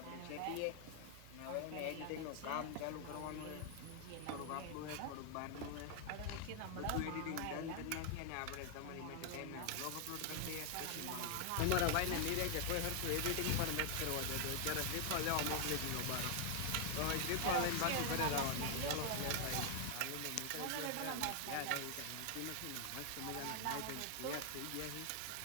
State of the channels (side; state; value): both; different; correlation 0.00